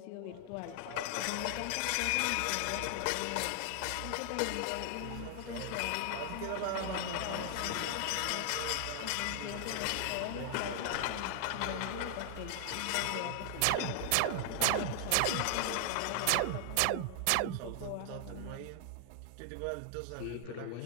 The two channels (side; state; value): both; different; correlation 0.00